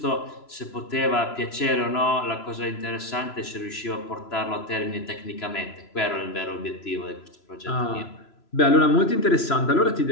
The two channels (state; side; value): late; right; 3.0 ms